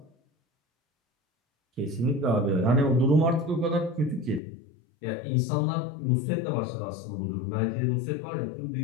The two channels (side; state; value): right; drops out; at 4.4 s